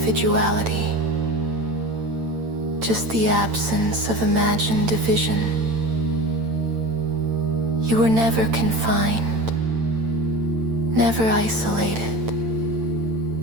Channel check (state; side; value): late; left; 8.9 ms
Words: just the absence of imagined division. You were never confined, never isolated,